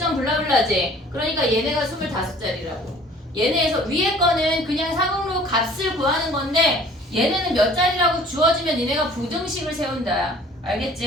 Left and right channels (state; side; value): normal; both; correlation 0.51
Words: 블라블라지. 그러니까 얘네가 25자리라고. 얘네에서 위에 거는 그냥 상용로 값을 구하는 건데 얘네는 몇 자리라고 주어지면 니네가 부등식을 세운다.